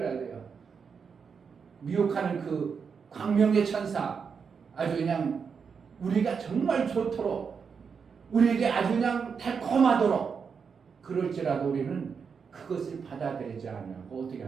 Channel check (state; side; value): quieter; left; 6.0 dB